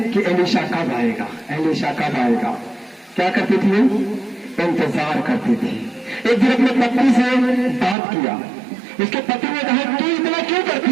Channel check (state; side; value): drops out; left; at 8.0 s